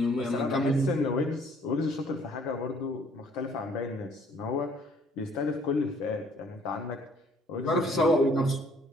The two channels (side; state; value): both; normal; correlation 0.60